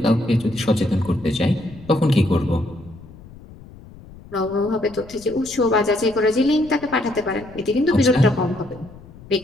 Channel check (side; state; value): left; noise; rumble, 20 dB below the sound